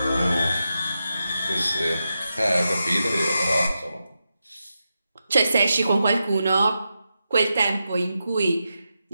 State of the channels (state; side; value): inverted; both; correlation -0.88